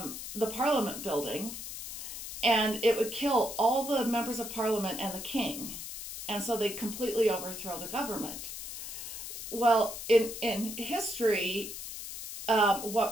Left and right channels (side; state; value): left; noise; hiss, 8 dB below the sound